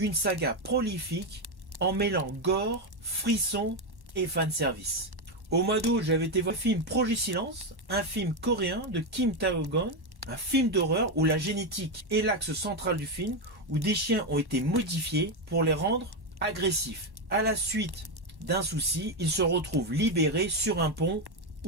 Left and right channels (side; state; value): left; late; 1.1 ms